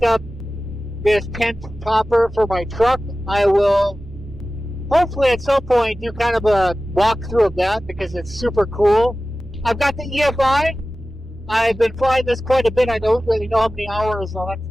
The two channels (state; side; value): normal; both; correlation 0.96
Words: up this tent topper for my truck. I will hopefully at some point do kind of a walkthrough of that because it's super cool. I've got the EFI. I've been flying this quite a bit. I don't really know how many hours. I'll have to